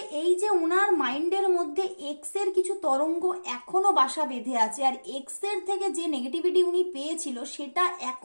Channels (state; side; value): inverted; both; correlation -1.00